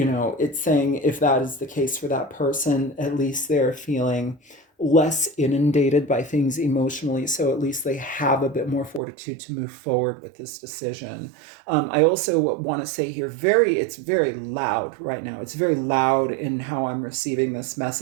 saying if that is the case for that person, at least they're feeling less inundated by things emotionally, so at least they have a bit more fortitude to move forward with this decision. I also want to say here, it's very loud right now. It's very loud in how I'm receiving this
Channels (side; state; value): left; drops out; at 9.0 s